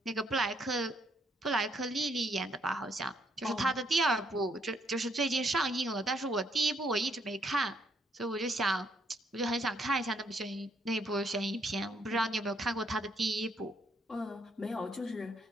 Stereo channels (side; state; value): both; normal; correlation 0.71